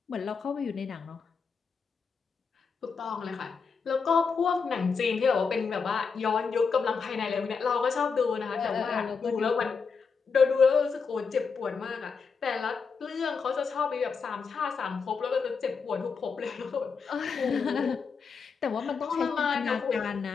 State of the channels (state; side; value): quieter; right; 5.4 dB